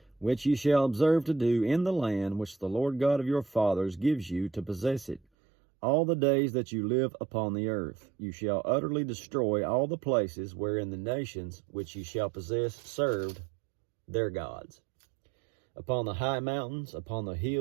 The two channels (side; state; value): left; drops out; at 5.2 s